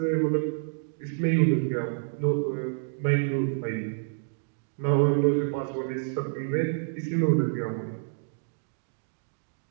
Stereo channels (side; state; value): left; silent; digital silence